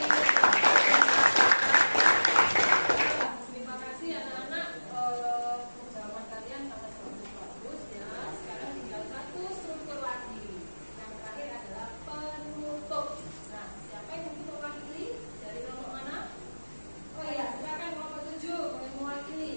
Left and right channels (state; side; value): inverted; both; correlation -1.00